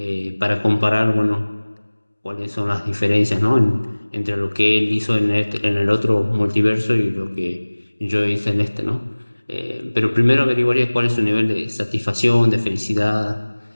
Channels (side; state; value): both; inverted; correlation -1.00